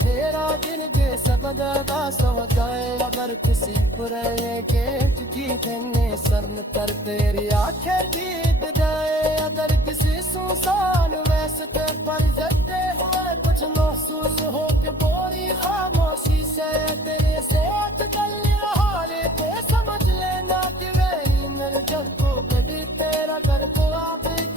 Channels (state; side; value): normal; both; correlation 0.52